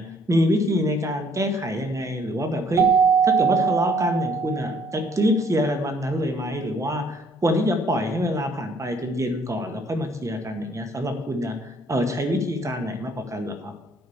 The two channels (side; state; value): both; normal; correlation 0.63